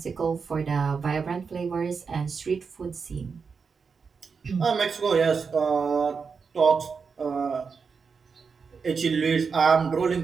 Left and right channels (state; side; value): quieter; left; 5.4 dB